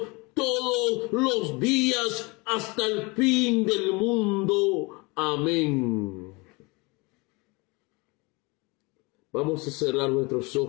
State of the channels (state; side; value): quieter; right; 26.9 dB